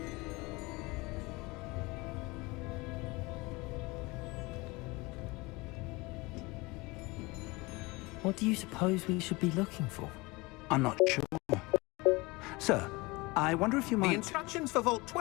What do you suppose we should be looking for? I'm not sure. Sir, I wonder if you The might... instructions for Vault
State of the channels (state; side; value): quieter; right; 24.1 dB